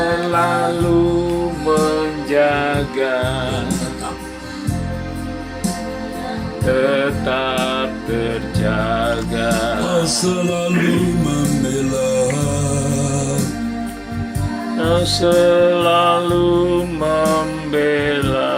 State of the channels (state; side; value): identical; both; correlation 1.00